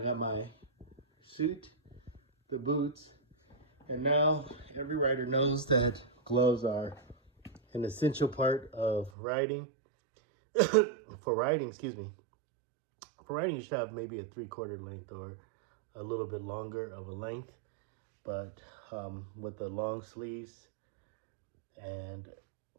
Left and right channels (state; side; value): drops out; left; at 9.1 s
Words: my suit, the boots, and now every rider knows that gloves are an essential part of riding. For riding, excuse me. For riding, you should have maybe a 3/4 length or a little bit longer of a length, but with the long sleeves, and